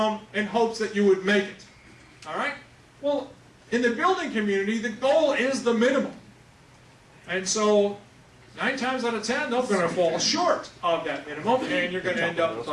in hopes that you would make it? All right? Well, in the building community, the goal is the minimum. And so, 9 times out of 10, they're going to fall short of that minimum, and you're going to end up with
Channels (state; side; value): identical; both; correlation 1.00